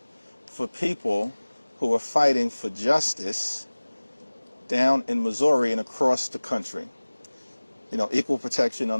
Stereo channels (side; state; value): both; inverted; correlation -1.00